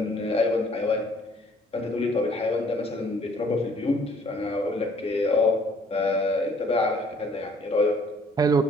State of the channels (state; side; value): normal; both; correlation 0.59